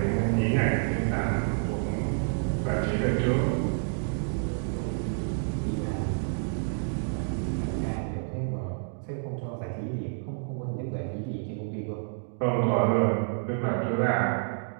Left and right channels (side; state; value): left; silent; digital silence